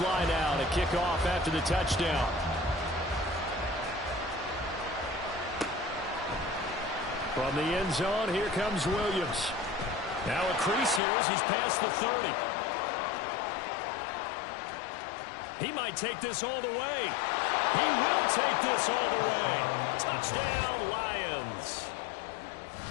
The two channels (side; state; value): right; drops out; at 11.0 s